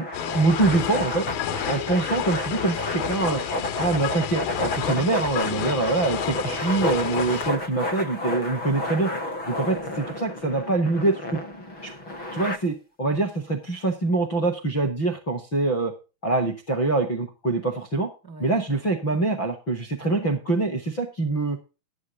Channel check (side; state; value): right; late; 6.1 ms